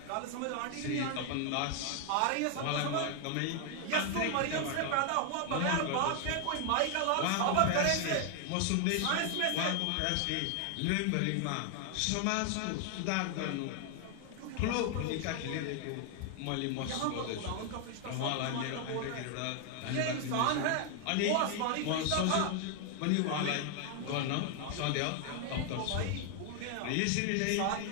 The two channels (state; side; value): different; both; correlation 0.00